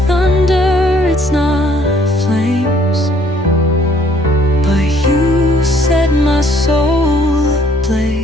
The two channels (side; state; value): both; normal; correlation 0.62